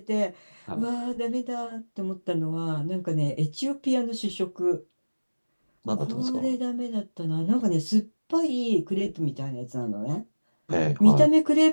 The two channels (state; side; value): inverted; both; correlation -1.00